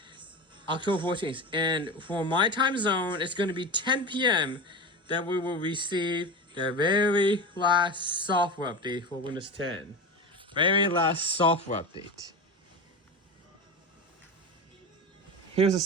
October 14th. And for my time zone, it's gonna be 10 p.m. that we will receive the very last software update for Windows 10. Very last software update. Here's a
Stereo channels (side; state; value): both; normal; correlation 0.25